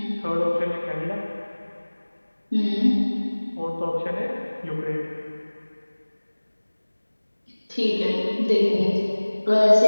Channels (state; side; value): inverted; both; correlation -1.00